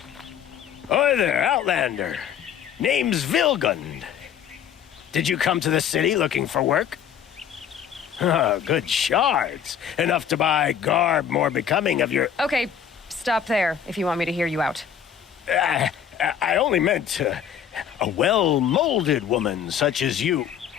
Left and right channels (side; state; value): right; quieter; 8.6 dB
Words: Oi there, Outlander. Name's Vilgund. Did you come to the city looking for work? Oh, good shards. Enough to buy garb more becoming of your... Okay, stop there if you want me to hear you out. I only meant a well-molded woman such as you.